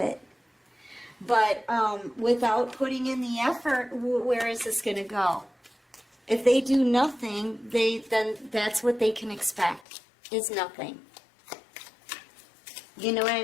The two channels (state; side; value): drops out; right; at 9.8 s